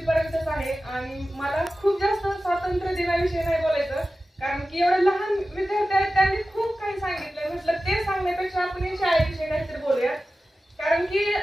पर्यंतच आहे. आणि मला खूप जास्त स्वातंत्र्य दिनाविषयी नाही बोलायचं कारण की एवढे लहान विद्यार्थी आहेत, त्यांनी खूप काही सांगितलं. म्हटलं ते सांगण्यापेक्षा आपण या शाळेविषयी काहीतरी बोलूया. कारण की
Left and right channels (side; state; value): both; normal; correlation 0.95